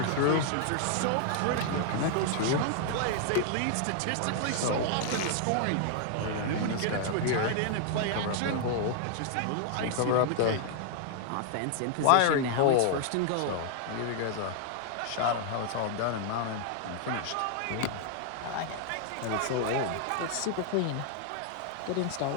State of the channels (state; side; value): different; both; correlation 0.00